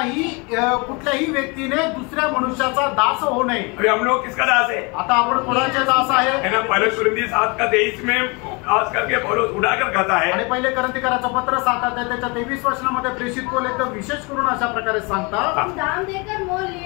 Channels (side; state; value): right; quieter; 29.2 dB